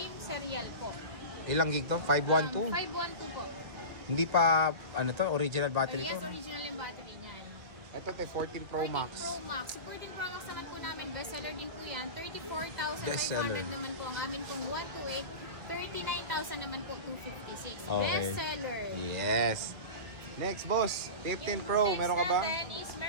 serial po. Ilang gig to? 512? 512 po. Hindi pa, ano to, original battery Yes, to? original yung battery niyan. Ito, te, 14 Pro 14 Max. Pro Max. Sa 14 Pro Max naman po namin, bestseller din po yan. 34,500 Bestseller. naman po ang amin pong 128. 39,000 naman po 256. Okay. Bestseller. Yes. Next, boss. 15 Pro, Yung meron ka ba? next natin is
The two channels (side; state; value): left; late; 2.0 ms